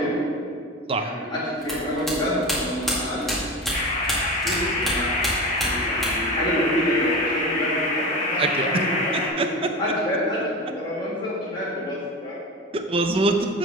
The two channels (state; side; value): normal; both; correlation 0.27